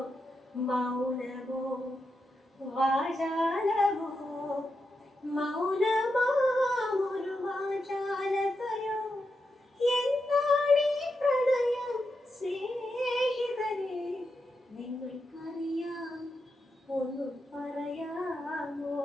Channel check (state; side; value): normal; both; correlation 0.86